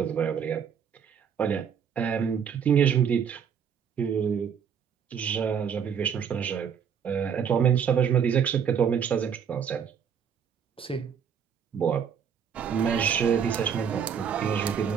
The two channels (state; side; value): quieter; left; 7.5 dB